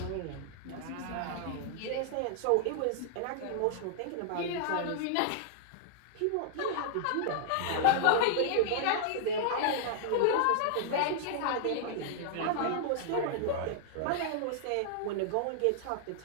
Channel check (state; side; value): different; both; correlation -0.01